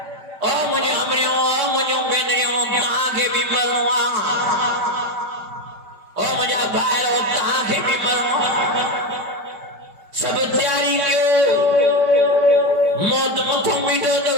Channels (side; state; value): left; late; 5.0 ms